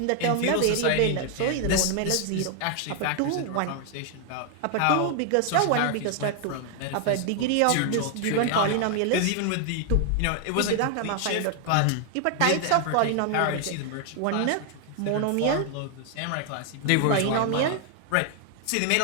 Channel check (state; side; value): different; both; correlation 0.00